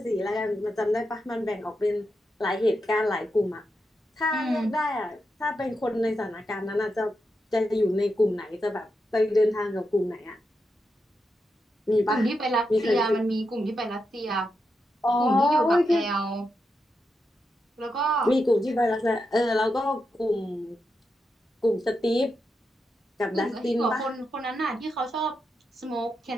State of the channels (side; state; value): both; normal; correlation 0.86